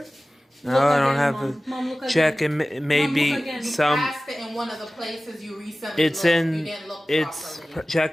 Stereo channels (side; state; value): both; normal; correlation 0.97